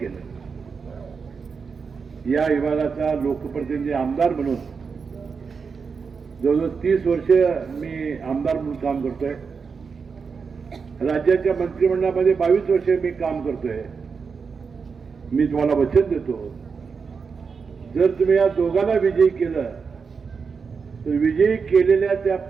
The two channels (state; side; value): quieter; left; 5.5 dB